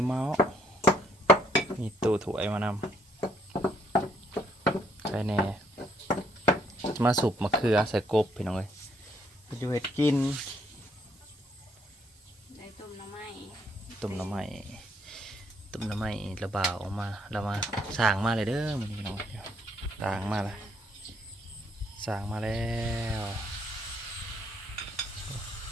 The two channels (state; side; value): normal; both; correlation 0.68